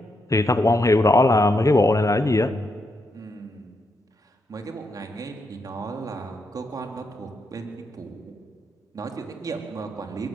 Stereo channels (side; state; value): both; normal; correlation 0.80